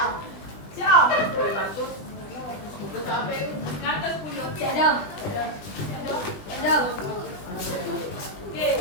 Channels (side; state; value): right; late; 20 ms